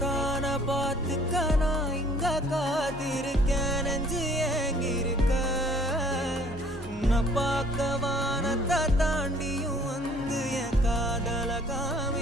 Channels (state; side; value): normal; both; correlation 0.56